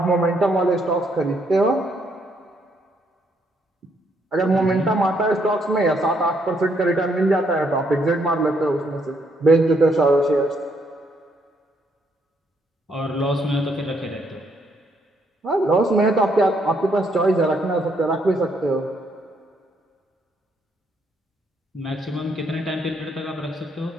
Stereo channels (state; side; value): normal; both; correlation 0.72